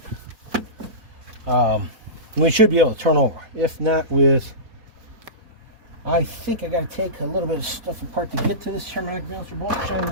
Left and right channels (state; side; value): late; left; 4.2 ms